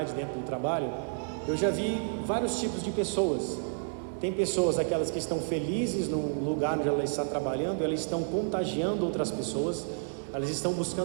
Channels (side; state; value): left; silent; digital silence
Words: dentro do trabalho, eu já vi vários tipos de pessoas. Tem pessoas, aquelas que estão felizes no lugar onde ela está trabalhando, elas estão contagiando outras pessoas, elas estão